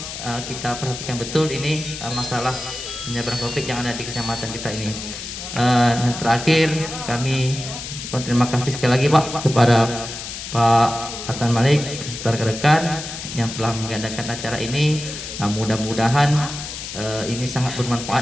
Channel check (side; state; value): left; noise; hiss, 9 dB below the sound